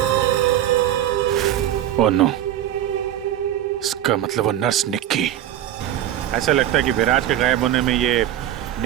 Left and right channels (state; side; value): quieter; left; 11.9 dB